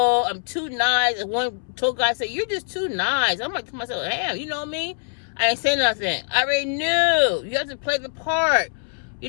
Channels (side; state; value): right; silent; 63 dB below the other